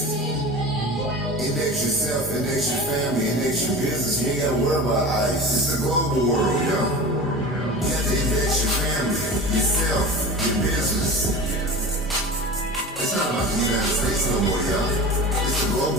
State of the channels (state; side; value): normal; both; correlation 0.33